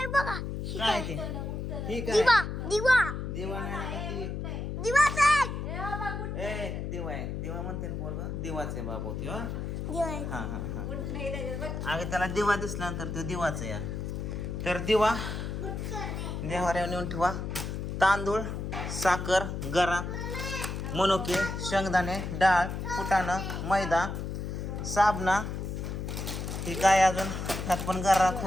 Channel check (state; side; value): noise; left; hum, 4 dB below the sound